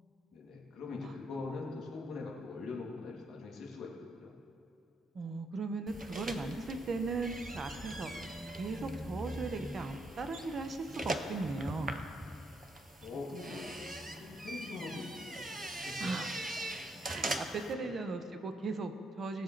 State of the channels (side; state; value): both; normal; correlation 0.76